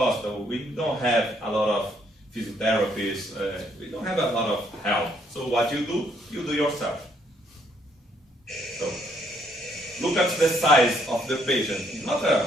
we don't have a lot of physiotherapists, we don't have a lot of help. So what you do yourself. So, look at the size of the patient. It's not a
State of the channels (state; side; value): normal; both; correlation 0.70